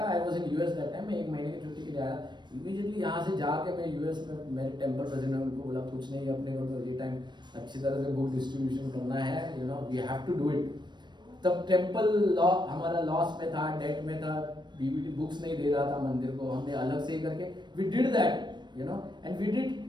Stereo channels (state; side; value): late; left; 0.22 ms